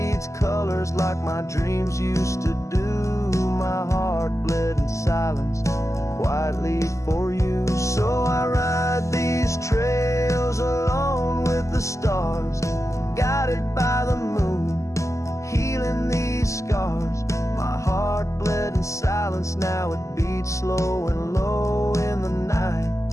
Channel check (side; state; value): right; late; 0.15 ms